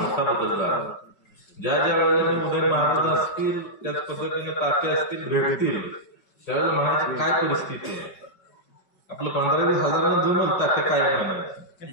बदल झाला. ज्या ज्या वेळेला उदय महाराज असतील, त्याच पद्धतीने तात्या असतील भेटतील, त्यावेळेला म्हणायची काय परिस्थिती आहे. आपलं 15-20 हजारांना जमल तात्या काय म्हणायचं,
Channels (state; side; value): late; right; 5.3 ms